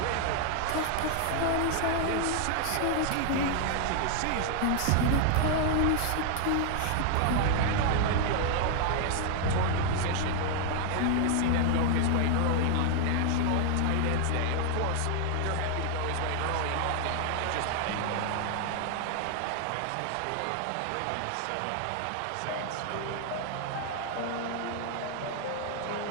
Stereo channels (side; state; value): both; different; correlation 0.00